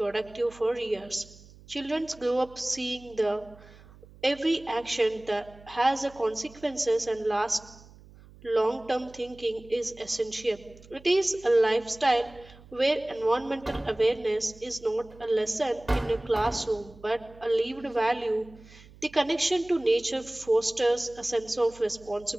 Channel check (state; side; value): noise; right; hum, 22 dB below the sound